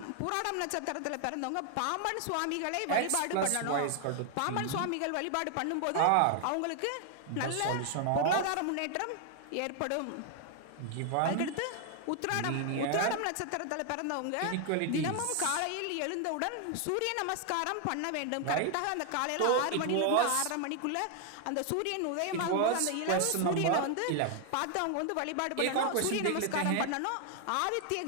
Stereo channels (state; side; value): different; both; correlation 0.00